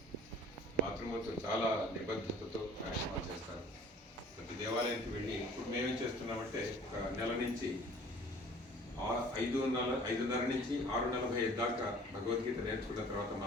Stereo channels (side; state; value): both; normal; correlation 0.50